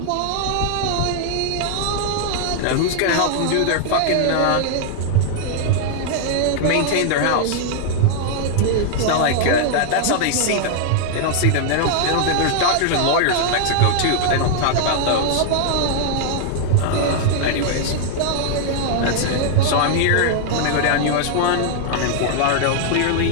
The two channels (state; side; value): different; both; correlation 0.00